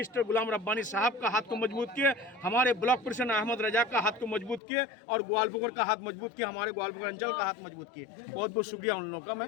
गुलाम रब्बानी साहब का हाथ को मजबूत किए, हमारे ब्लॉक प्रेसिडेंट अहमद रजा का हाथ को मजबूत किए और ग्वालपुर का हाथ मजबूत किया, हमारे ग्वालपुर अंचल का हाथ मजबूत किए। बहुत बहुत शुक्रिया उन लोगों का,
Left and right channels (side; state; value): right; drops out; at 4.6 s